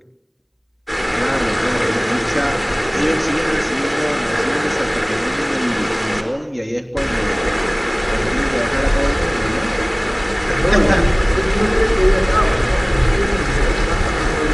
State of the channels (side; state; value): both; identical; correlation 1.00